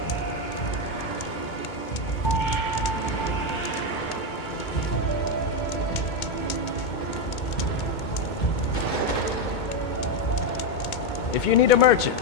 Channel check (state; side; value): late; right; 2.2 ms